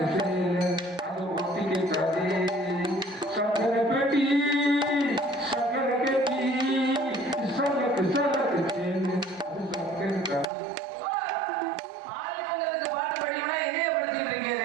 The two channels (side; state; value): left; drops out; at 10.5 s